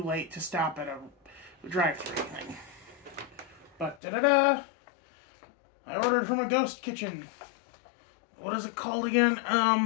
late to stop at a drive-thru thing. But, I ordered from a ghost kitchen. What is it called again?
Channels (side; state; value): right; drops out; at 4.0 s